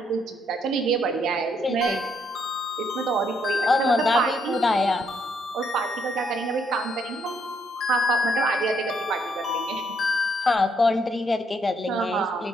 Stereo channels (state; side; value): normal; both; correlation 0.73